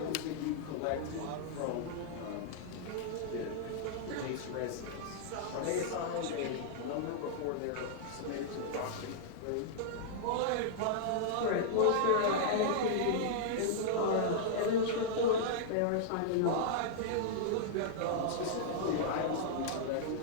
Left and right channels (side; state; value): both; different; correlation -0.02